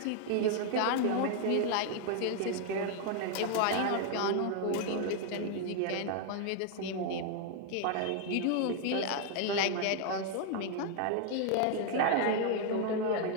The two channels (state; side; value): different; both; correlation 0.00